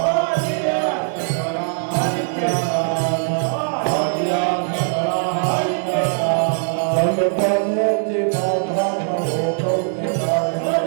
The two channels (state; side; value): silent; left; digital silence